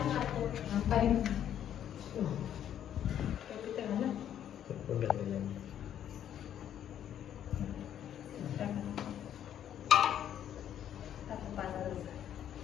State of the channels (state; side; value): quieter; right; 10.2 dB